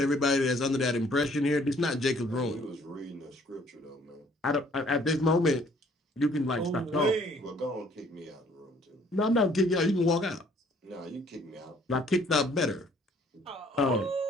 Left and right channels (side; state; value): both; normal; correlation 0.60